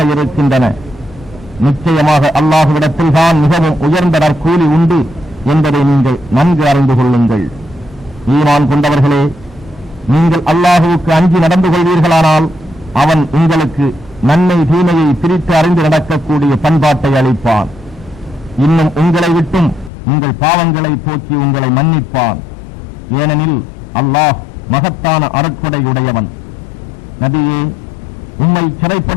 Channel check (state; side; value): drops out; right; at 19.9 s